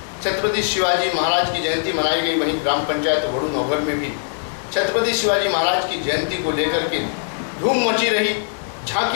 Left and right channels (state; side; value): silent; right; digital silence